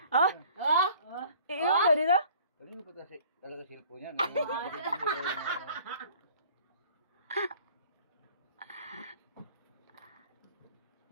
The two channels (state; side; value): inverted; both; correlation -0.52